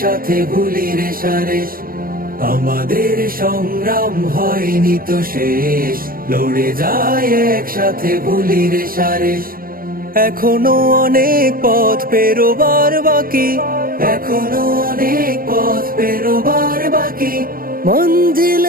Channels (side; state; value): left; late; 0.42 ms